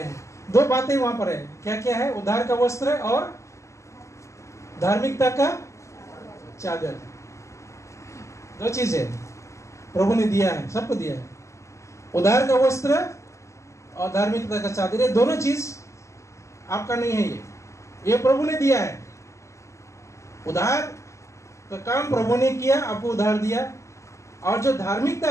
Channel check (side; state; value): right; late; 0.14 ms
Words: हैं। दो बातें वहां पर है। क्या क्या है? उद्धार का वस्त्र और धार्मिकता का चादर। दो चीजें प्रभु ने दिया है, सबको दिया है। उद्धार का वस्त्र और धार्मिकता का चादर, ये दोनों चीज आपका नहीं है, ये प्रभु ने दिया है। उद्धार का काम प्रभु ने किया, आपको उद्धार दिया। और जो